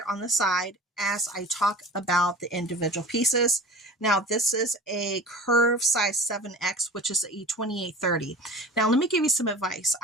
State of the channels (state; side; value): normal; both; correlation 0.39